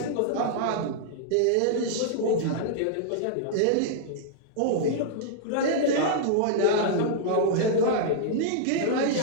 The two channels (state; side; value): different; both; correlation -0.01